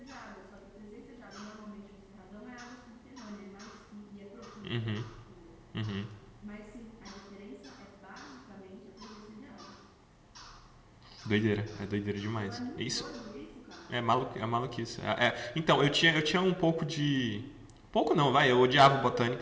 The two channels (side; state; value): both; identical; correlation 1.00